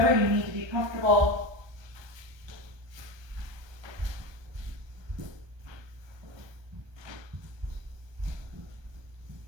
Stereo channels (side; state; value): left; late; 1.3 ms